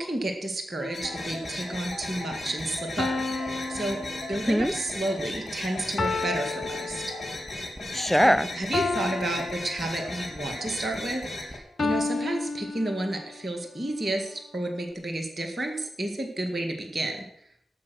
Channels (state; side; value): normal; both; correlation 0.89